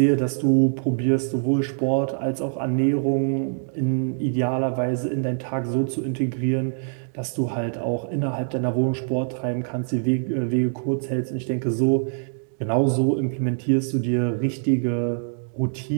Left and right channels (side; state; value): left; silent; digital silence